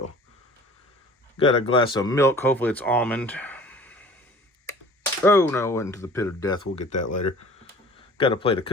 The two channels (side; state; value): both; normal; correlation 0.46